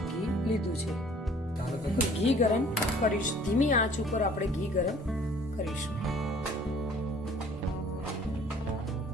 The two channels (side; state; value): both; normal; correlation 0.54